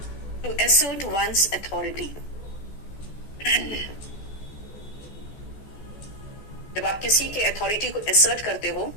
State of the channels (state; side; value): late; right; 14 ms